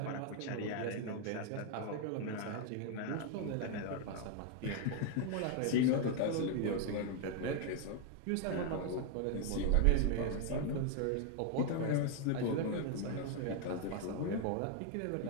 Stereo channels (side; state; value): both; different; correlation 0.00